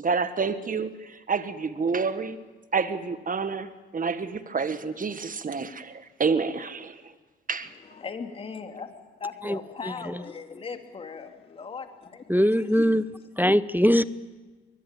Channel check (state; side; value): normal; both; correlation 0.64